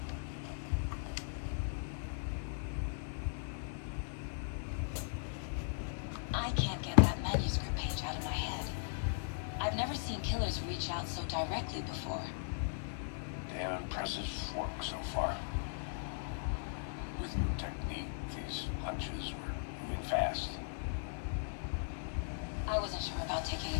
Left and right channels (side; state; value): right; silent; digital silence